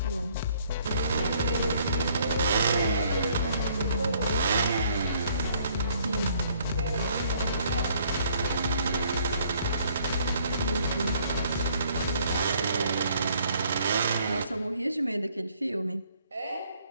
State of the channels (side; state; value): both; inverted; correlation -0.63